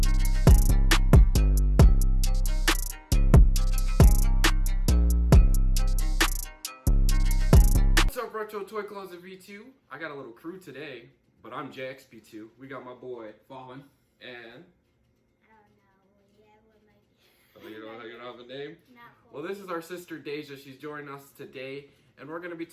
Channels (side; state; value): both; identical; correlation 1.00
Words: What's up, Retro Toy Closet V2? I got a little crew today, but I'm JXP2. We got my boy Fallen and I don't know. Yeah, what might be. you don't have a name. Not cool. Well, this is our sister Deja. She's joining us today, and we're gonna be